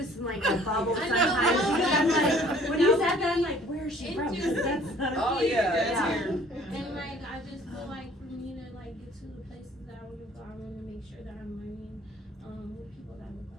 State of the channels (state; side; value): normal; both; correlation 0.54